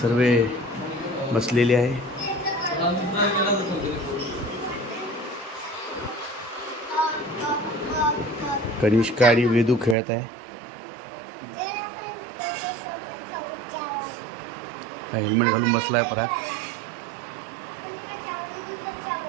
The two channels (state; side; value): drops out; left; at 10.0 s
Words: बसलेले आहे. कनिष्का आणि वेदू खेळत आहे. हेल्मेट घालून बसला आहे पराग.